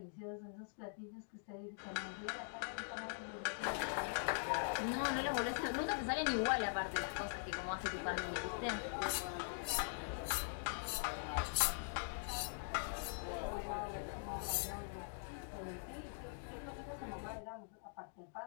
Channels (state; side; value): silent; right; digital silence